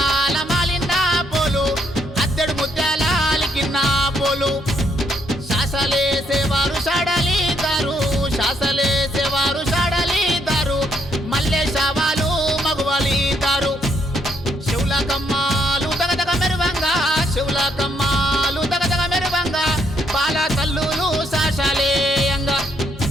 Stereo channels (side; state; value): both; normal; correlation 0.72